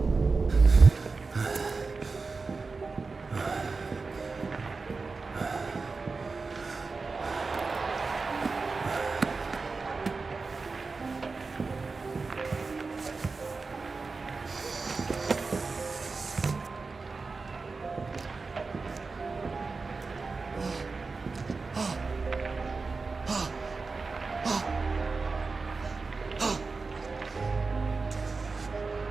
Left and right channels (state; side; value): quieter; left; 4.2 dB